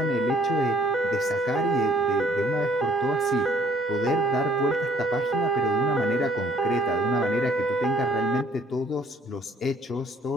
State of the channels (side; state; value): both; normal; correlation 0.61